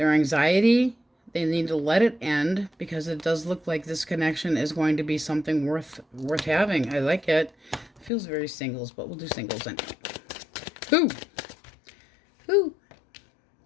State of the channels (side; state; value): right; drops out; at 8.1 s